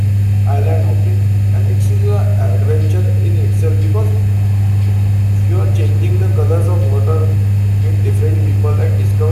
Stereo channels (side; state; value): both; identical; correlation 1.00